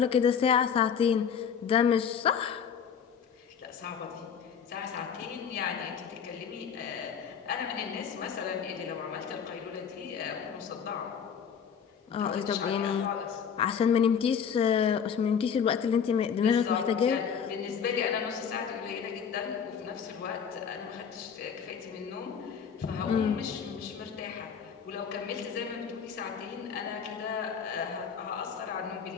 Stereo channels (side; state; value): right; quieter; 7.2 dB